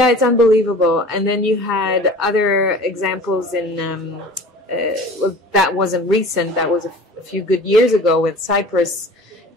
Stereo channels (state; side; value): normal; both; correlation 0.42